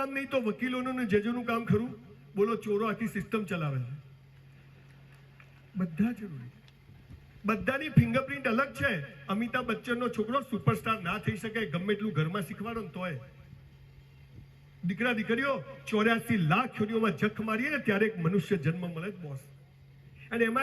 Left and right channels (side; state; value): both; identical; correlation 1.00